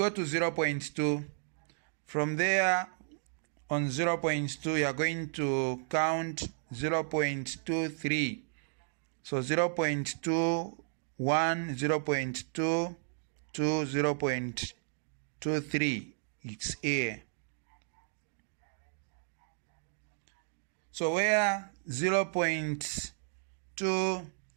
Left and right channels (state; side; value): silent; left; digital silence